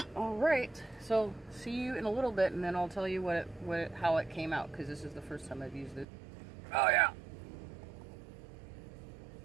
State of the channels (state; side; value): drops out; left; at 6.1 s